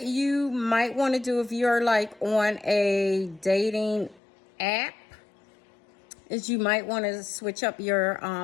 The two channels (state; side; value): drops out; right; at 4.2 s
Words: you might want to do if you're like on a dating app is you might want to switch up your